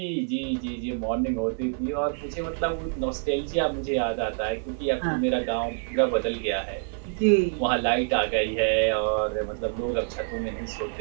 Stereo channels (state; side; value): silent; left; 57 dB below the other